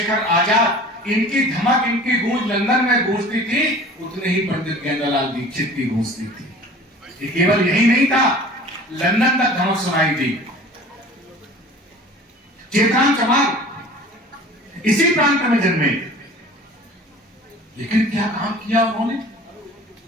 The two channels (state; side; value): normal; both; correlation 0.44